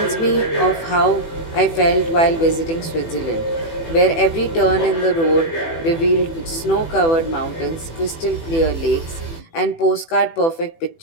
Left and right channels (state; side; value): late; right; 18 ms